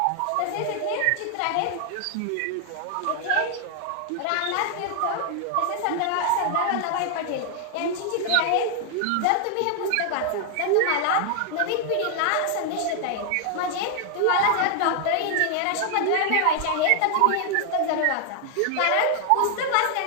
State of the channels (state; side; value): different; both; correlation 0.00